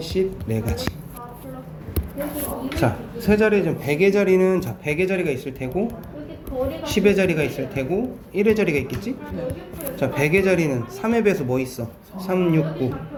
자, 세 자리, 지금 100의 자리는, 자, 100의 자리가 있을 테고 10의 자리가 있을 테고 1의 자리가 있겠지? 자, 100의 자리는 3의 배수 뭐 있어? 3, 6, 9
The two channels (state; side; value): identical; both; correlation 1.00